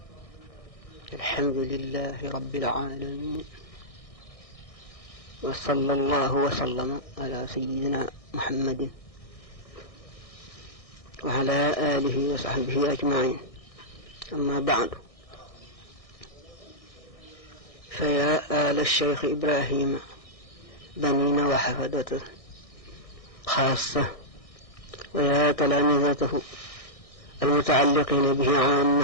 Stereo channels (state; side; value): late; right; 1.6 ms